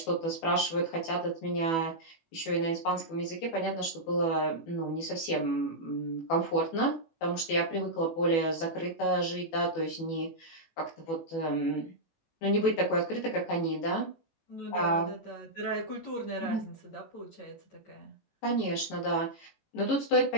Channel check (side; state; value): right; late; 18 ms